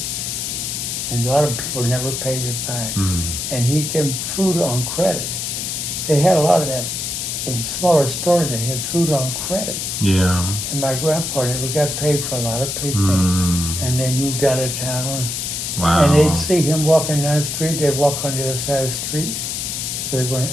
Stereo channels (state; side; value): noise; left; hiss, 3 dB below the sound